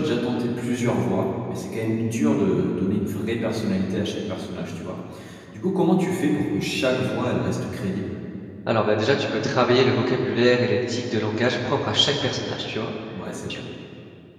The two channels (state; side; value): identical; both; correlation 1.00